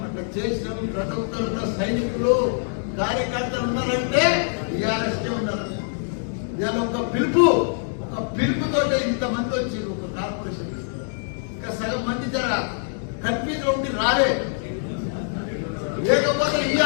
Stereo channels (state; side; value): silent; right; digital silence